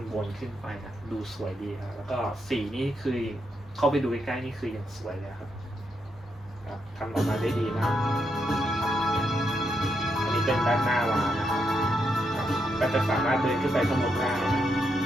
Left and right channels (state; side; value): normal; both; correlation 0.81